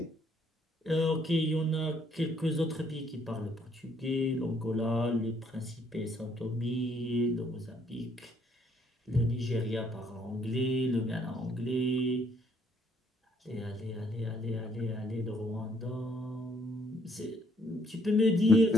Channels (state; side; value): normal; both; correlation 0.67